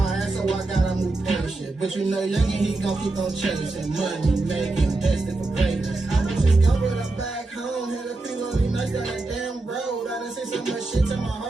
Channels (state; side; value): quieter; left; 3.1 dB